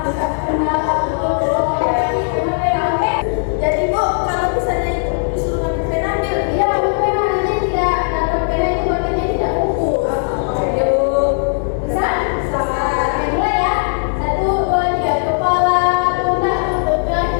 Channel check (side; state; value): right; silent; digital silence